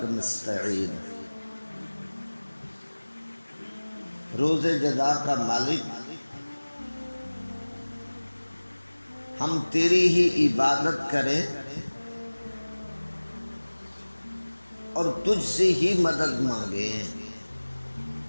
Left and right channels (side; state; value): both; inverted; correlation -1.00